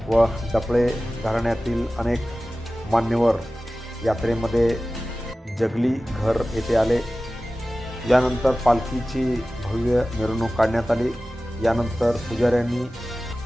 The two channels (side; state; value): both; normal; correlation 0.96